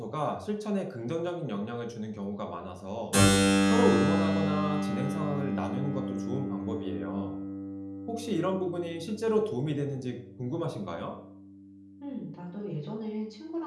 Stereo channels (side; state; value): both; identical; correlation 1.00